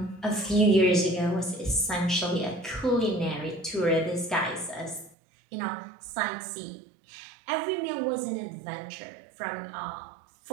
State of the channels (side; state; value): left; drops out; at 5.2 s